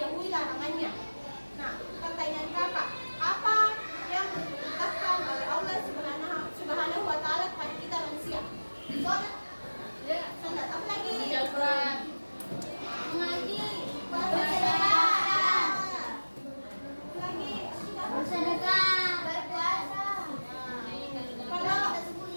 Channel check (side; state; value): both; inverted; correlation -1.00